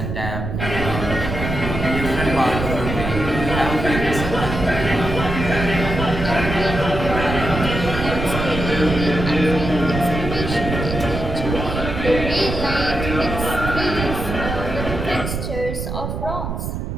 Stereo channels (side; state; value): right; noise; rumble, 4 dB below the sound